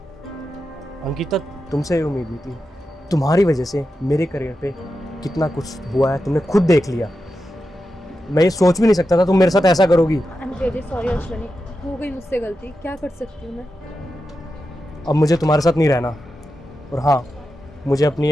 अंकिता, तुमसे ये उम्मीद नहीं थी। तुम्हारी वजह से मेरे करियर पे कितना कुछ हुआ है, तुमने खुद देख लिया। मैं ये सोच भी नहीं सकता था तुम मेरे साथ ऐसा करोगी। I am really sorry Ashwini, हो गई मुझसे गलती, क्या कर सकती हूँ मैं? अब मुझे तुम्हारे साथ नहीं रहना। और हाँ, मुझे अपनी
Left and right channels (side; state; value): both; normal; correlation 0.90